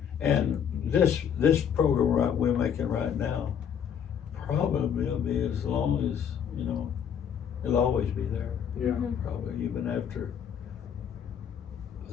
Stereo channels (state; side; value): quieter; right; 8.2 dB